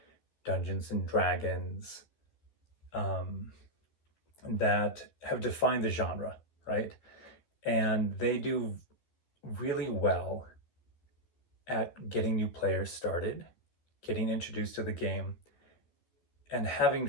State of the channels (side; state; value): right; late; 13 ms